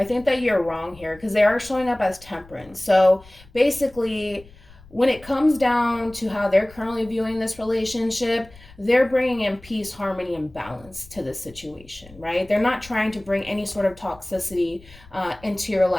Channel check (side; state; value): left; noise; rumble, 23 dB below the sound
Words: think that you're wrong here because they are showing up as Temperance. So basically, when it comes down to how they're currently viewing this relationship, they're bringing in peace, harmony, and balance to the situation, right? They're not trying to bring any sort of toxicity into your